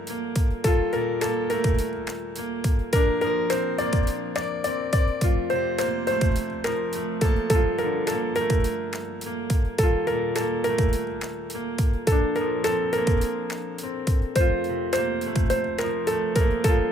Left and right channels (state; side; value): normal; both; correlation 0.74